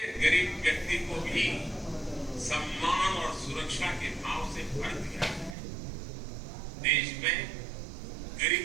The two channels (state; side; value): drops out; left; at 5.6 s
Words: व्यक्ति को भी सम्मान और सुरक्षा के भाव से भर दिया है। देश में